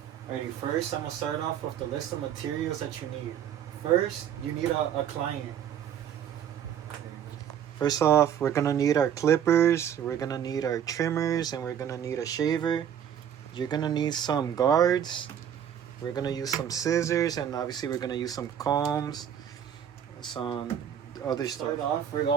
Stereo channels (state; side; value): quieter; left; 9.3 dB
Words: Alrighty, first I'm going to start off with the list of materials that you need. First, you need a client. First off, we're going to need our clippers, we're going to need our trimmers, and we're going to need a shaver. You're going to need some guards. We're going to use some scissors, and obviously we're going to use some combs, some other stuff. We